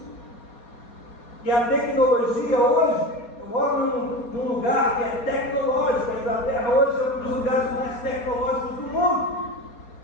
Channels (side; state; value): right; late; 4.2 ms